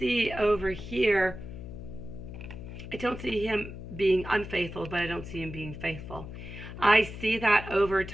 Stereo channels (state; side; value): noise; left; hum, 10 dB below the sound